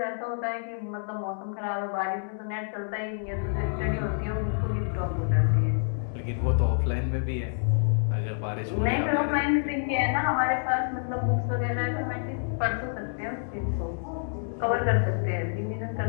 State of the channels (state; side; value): silent; right; digital silence